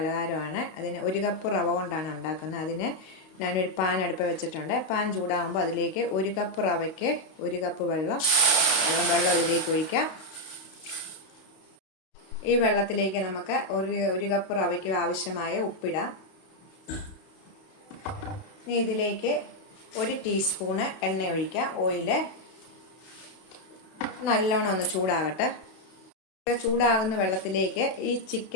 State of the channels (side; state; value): right; late; 32 ms